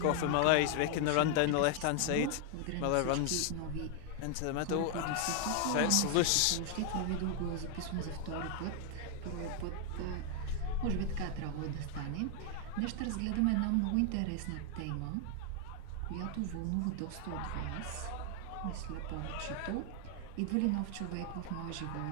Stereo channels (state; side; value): different; both; correlation 0.00